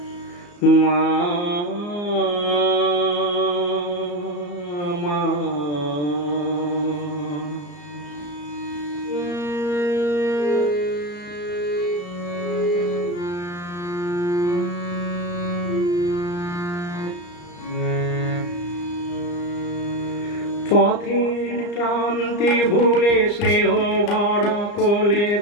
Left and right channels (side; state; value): right; late; 34 ms